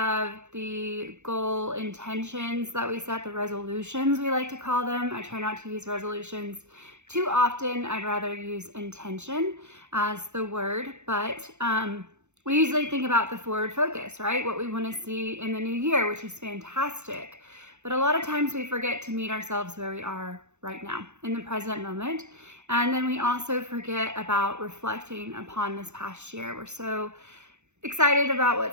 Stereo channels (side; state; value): left; late; 0.83 ms